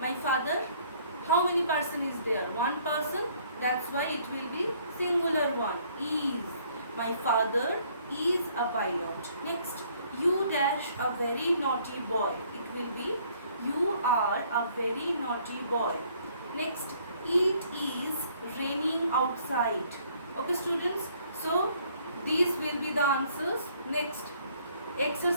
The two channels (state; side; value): inverted; both; correlation -0.62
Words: father, how many person is there? One person. That's why it will be singular one. Is. My father is a pilot. Next, you dash a very naughty boy. It will be you are a very naughty boy. Next, it is raining outside. Okay students, so these will be the answers. Next,